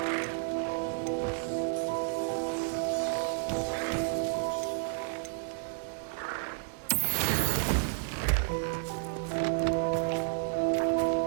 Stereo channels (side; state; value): left; silent; 57 dB below the other